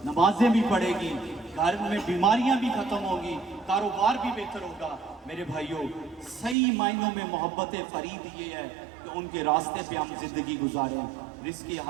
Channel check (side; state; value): left; drops out; at 6.6 s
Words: نمازیں بھی پڑھے گی، گھر میں بیماریاں بھی ختم ہوگی، کاروبار بھی بہتر ہوگا۔ میرے بھائیوں، صحیح معنوں میں محبت فرید یہ ہے کہ ان کے راستے پہ ہم زندگی گزاریں، رزق